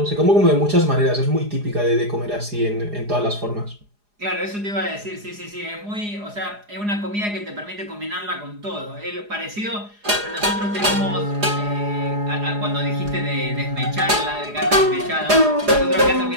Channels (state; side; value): late; left; 4.9 ms